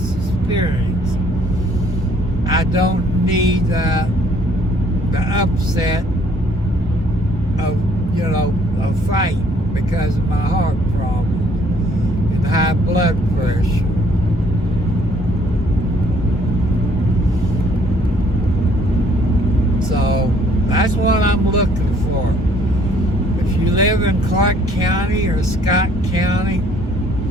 experience. I don't need the upset of, you know, a fight because of my heart problems and high blood pressure. So that's what I'm looking for. If you live in Clark County or Scott County,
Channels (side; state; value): both; normal; correlation 0.62